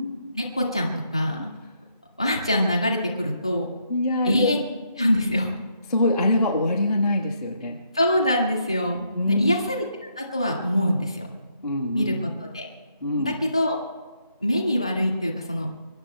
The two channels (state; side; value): inverted; both; correlation -0.75